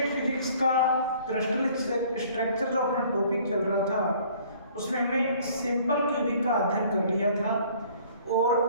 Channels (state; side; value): inverted; both; correlation -0.55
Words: फिजिक्स का क्रिस्टल स्ट्रक्चर जो अपना टॉपिक चल रहा था उसमें हमने सिंपल क्यूबिक का अध्ययन कर लिया था और